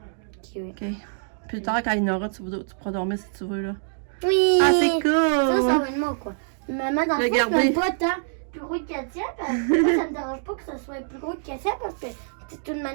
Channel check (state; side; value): silent; left; digital silence